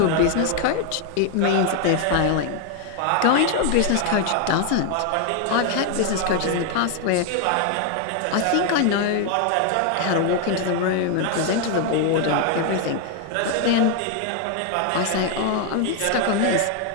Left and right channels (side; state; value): both; different; correlation 0.00